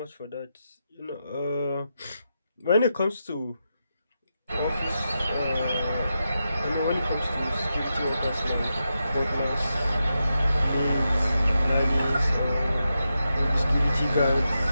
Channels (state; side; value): inverted; both; correlation -0.87